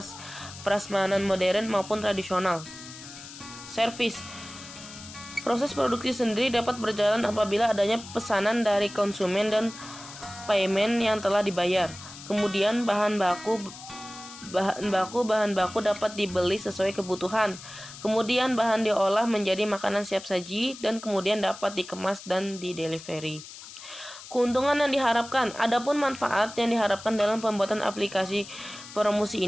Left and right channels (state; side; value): noise; left; hiss, 15 dB below the sound